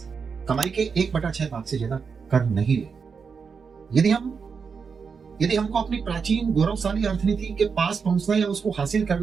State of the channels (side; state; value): left; quieter; 5.7 dB